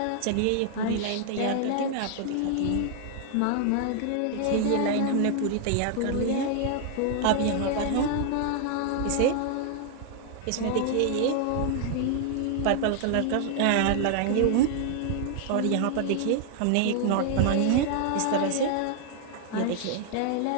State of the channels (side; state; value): both; different; correlation 0.00